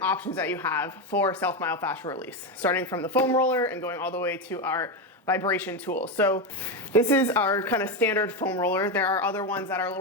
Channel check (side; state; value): both; normal; correlation 0.11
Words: options that you have for self-myofascial release, starting from the foam roller and going all the way to our vibration tool. So this is our kind of standard foam roller. There are other ones that are a